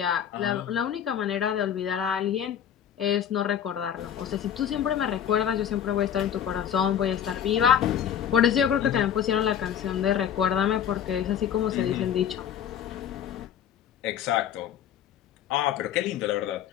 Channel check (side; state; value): right; quieter; 9.4 dB